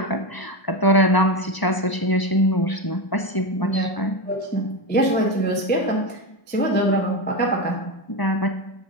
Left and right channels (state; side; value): late; right; 1.0 ms